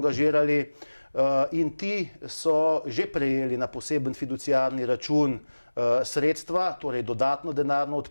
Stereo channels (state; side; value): inverted; both; correlation -1.00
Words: in ti so že prejeli na poseben fiduciarni račun sredstva, torej dodatno denarno